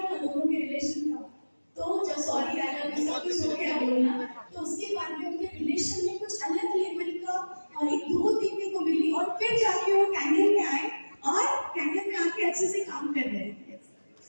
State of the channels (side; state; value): both; inverted; correlation -1.00